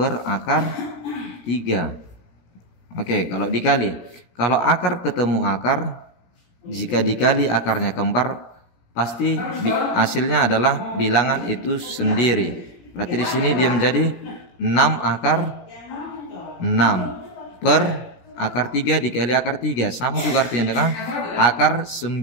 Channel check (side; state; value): right; late; 17 ms